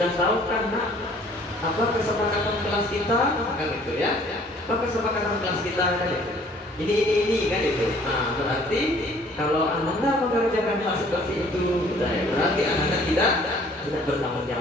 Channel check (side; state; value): both; normal; correlation 0.56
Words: tahu kan nak, apa kesepakatan kelas kita? Kan itu ya. Apa kesepakatan kelas kita kan itu? Ini kan itu. Nah, berarti kalau anak mengerjakan hal seperti itu, berarti anak tidak bertanggung